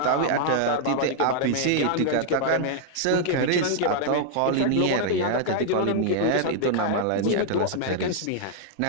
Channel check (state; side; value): different; both; correlation -0.01